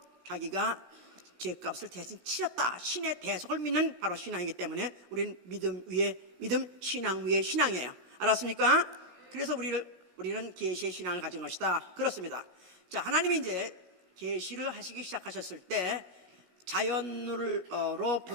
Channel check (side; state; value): left; late; 17 ms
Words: 자기가 죄값을 대신 치렀다, 신의 대속을 믿는 바로 신앙이기 때문에 우리는 믿음 위에 믿음, 신앙 위에 신앙이에요. 알았습니까? 그래서 우리는 계시의 신앙을 가진 것이다, 그렇습니다. 자, 하나님이 이제 계시를 하시기 시작하셨을 때 자연으로부터